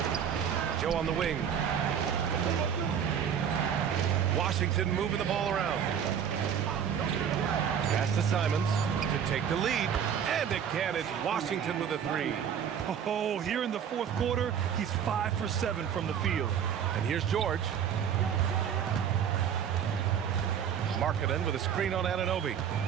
Joe on the wing. Washington moving the ball around. Pass to Simons to take the lead. And again, it's Washington with a 3. Oh, here in the fourth quarter, he's 5 for 7 from the field. And here's George. Markkanen with a screen on Anunoby.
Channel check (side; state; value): left; quieter; 8.3 dB